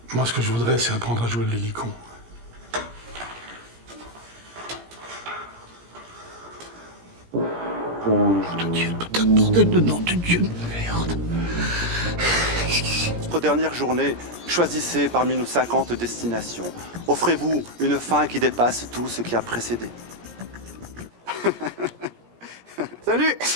Moi, ce que je voudrais, c'est apprendre à jouer de l'hélicon. Nom de Dieu, putain de bordel de nom de Dieu de merde. Notre dernière journée, choisissez parmi nos 50 destinations. Offrez-vous une fin qui dépasse tout ce qui a précédé. Salut,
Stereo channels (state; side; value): late; left; 17 ms